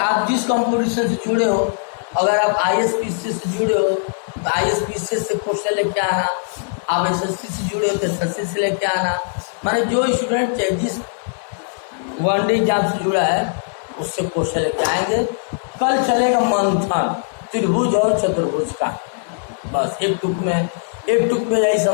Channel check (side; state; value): right; silent; digital silence